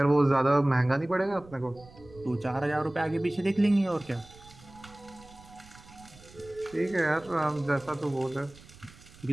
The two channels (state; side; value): noise; right; rumble, 22 dB below the sound